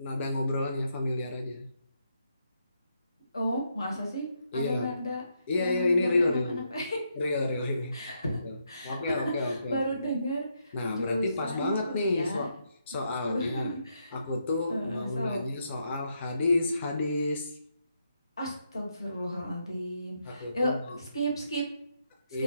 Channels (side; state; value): both; inverted; correlation -0.79